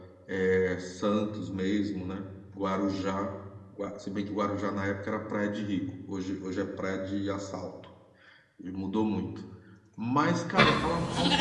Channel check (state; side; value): identical; both; correlation 1.00